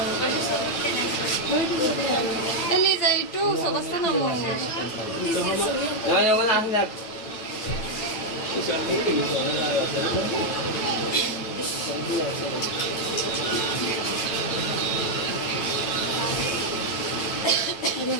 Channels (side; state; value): right; late; 9.0 ms